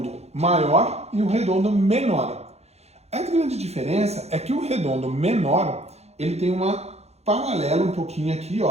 maior e o redondo menor. A grande diferença é que o redondo menor, ele tem uma paralela um pouquinho aqui,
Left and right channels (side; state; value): left; late; 0.31 ms